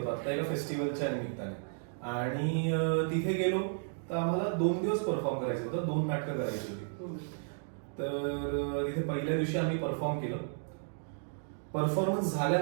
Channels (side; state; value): left; silent; digital silence